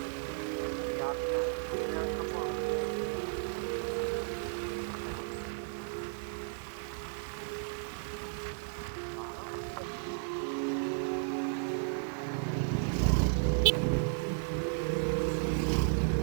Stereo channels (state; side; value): silent; left; digital silence